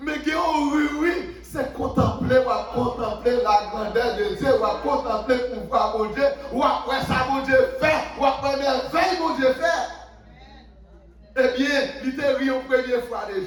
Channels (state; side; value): identical; both; correlation 1.00